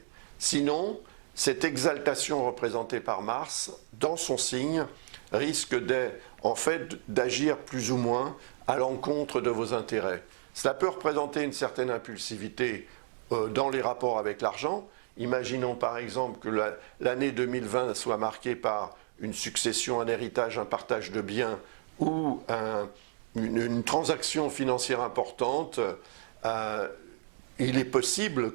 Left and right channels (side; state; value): left; silent; digital silence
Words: Sinon, cette exaltation représentée par Mars, dans son signe, risque en fait d'agir plus ou moins à l'encontre de vos intérêts. Cela peut représenter une certaine impulsivité dans les rapports avec l'argent. Imaginons par exemple que l'année 2020 soit marquée par une succession, un héritage, un partage de biens ou une transaction financière importante. Il est possible